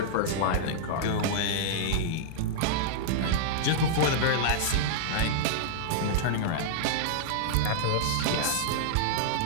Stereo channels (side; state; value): both; different; correlation -0.02